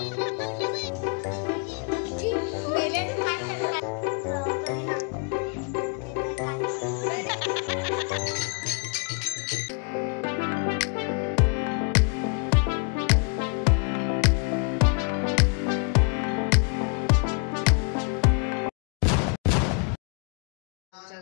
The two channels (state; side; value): quieter; right; 37.1 dB